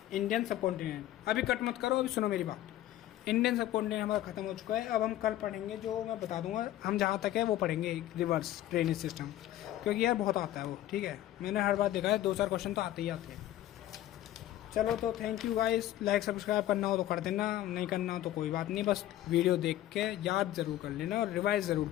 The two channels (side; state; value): right; quieter; 13.6 dB